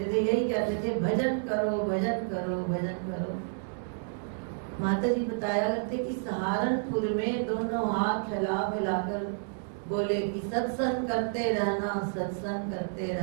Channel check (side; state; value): left; silent; digital silence